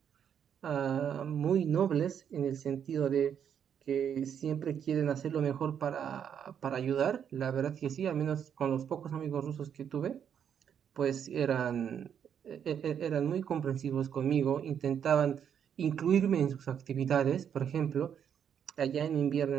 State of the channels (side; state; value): left; quieter; 8.4 dB